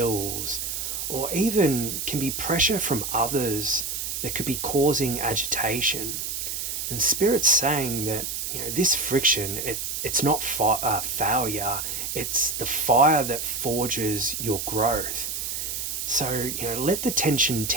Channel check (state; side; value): noise; right; hiss, 4 dB below the sound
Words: or even can be pressure from others that could be causing agitation. And Spirit's saying that this friction, it's not failure, it's the fire that forges your growth. So let the tension